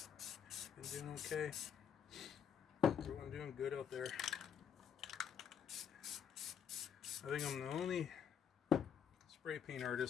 Been doing okay? Everyone doing good out there? I think I'm the only spray paint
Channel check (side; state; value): right; quieter; 8.1 dB